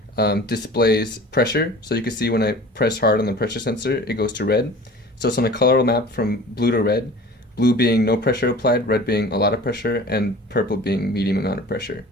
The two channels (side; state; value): both; normal; correlation 0.41